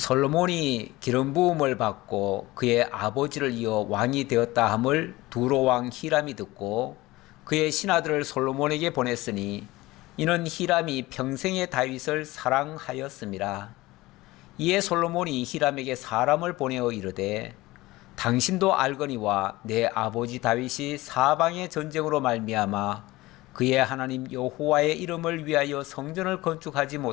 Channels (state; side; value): quieter; right; 19.3 dB